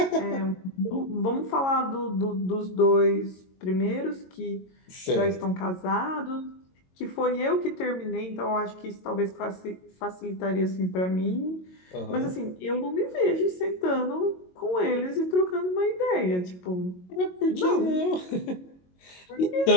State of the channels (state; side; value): late; right; 22 ms